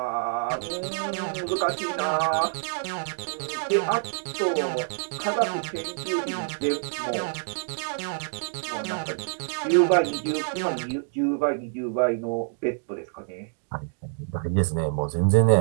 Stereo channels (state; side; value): silent; left; 60 dB below the other